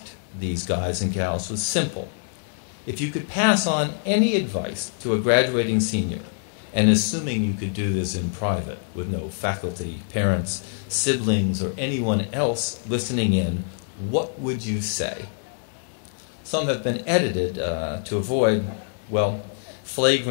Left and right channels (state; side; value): silent; right; 58 dB below the other